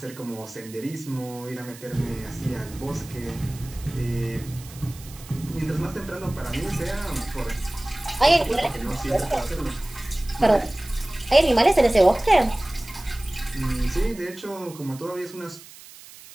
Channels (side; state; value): right; noise; hiss, 18 dB below the sound